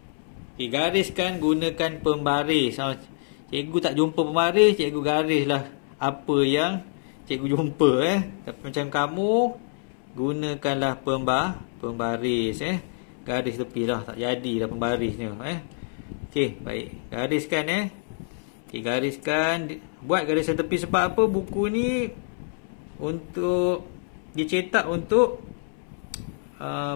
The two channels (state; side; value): silent; right; 61 dB below the other